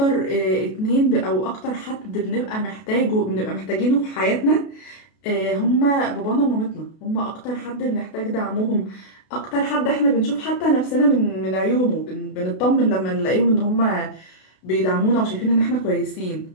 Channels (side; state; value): right; late; 32 ms